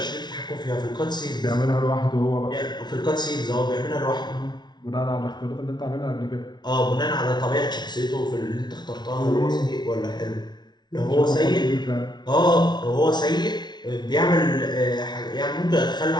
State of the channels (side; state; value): right; late; 0.20 ms